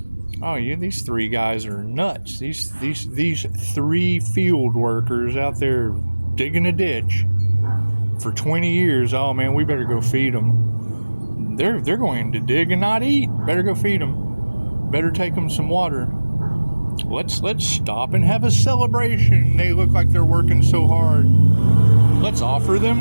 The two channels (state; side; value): inverted; both; correlation -1.00